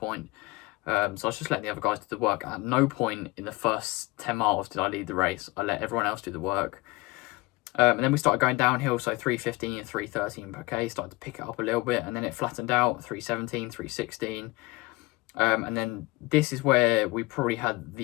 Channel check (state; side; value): quieter; right; 22.3 dB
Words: So I was just letting the other guys do the work. At no point in the first 10 miles did I lead the race. I let everyone else do the work. And then we started going downhill, so 3:15 and 3:13 per K, started to pick it up a little bit, and then it flattened out, 3:17, 3:16. And then this is where we probably had